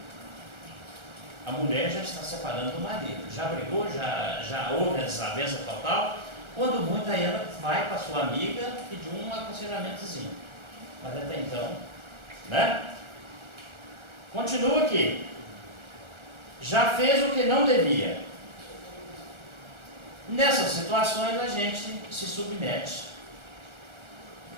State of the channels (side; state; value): left; late; 1.3 ms